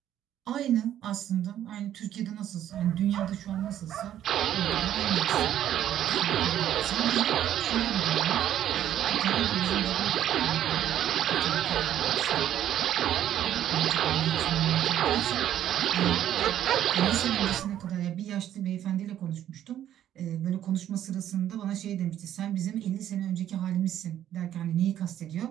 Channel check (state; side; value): quieter; left; 11.3 dB